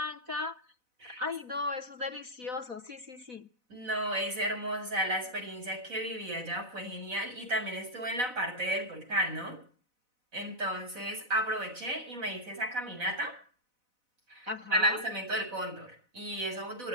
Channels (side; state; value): left; late; 4.0 ms